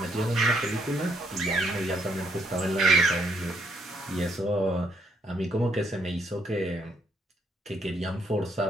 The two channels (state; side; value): normal; both; correlation 0.71